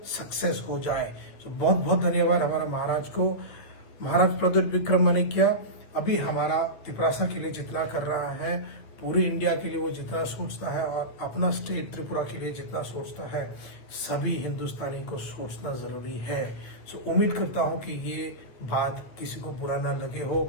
सक्सेस हो जाए। तो बहुत बहुत धन्यवाद हमारा महाराज को। महाराज प्रद्युत विक्रम माणिक्य अभी हमारा तिपरासा के लिए जितना कर रहा है, पूरे इंडिया के लिए वो जितना सोचता है और अपना स्टेट त्रिपुरा के लिए जितना सोचता है, सभी हिंदुस्तानी को सोचना जरूरी है। सो उम्मीद करता हूं कि ये बात किसी को बुरा ना लगे हो।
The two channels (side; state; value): right; late; 9.0 ms